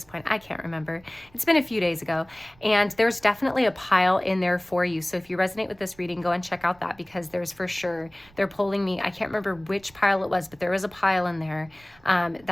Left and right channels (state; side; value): noise; right; rumble, 28 dB below the sound